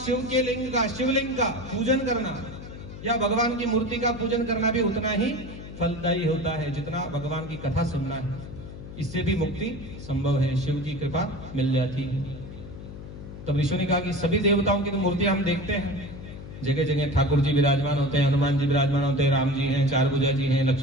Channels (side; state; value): left; noise; hum, 13 dB below the sound